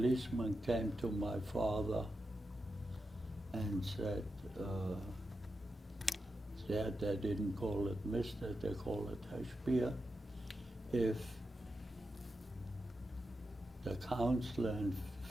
came to my father and said, they didn't call it Mr., they call it Spier. If the counselor in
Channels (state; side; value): normal; both; correlation 0.88